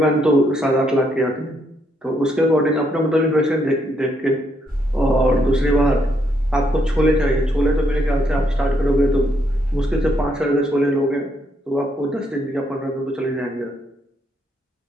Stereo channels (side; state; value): both; normal; correlation 0.75